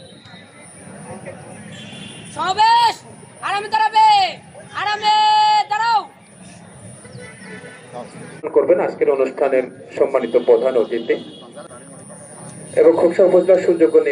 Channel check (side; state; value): both; identical; correlation 1.00